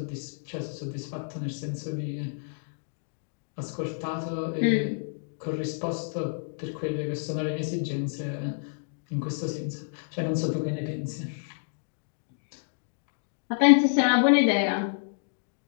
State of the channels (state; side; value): silent; right; digital silence